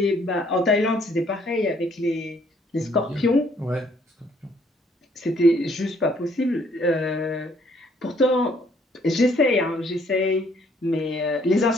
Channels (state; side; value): normal; both; correlation 0.65